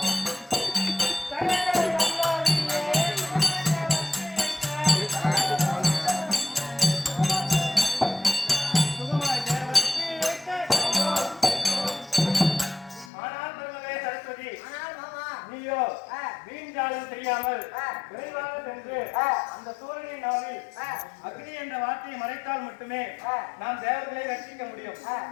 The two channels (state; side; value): drops out; right; at 13.1 s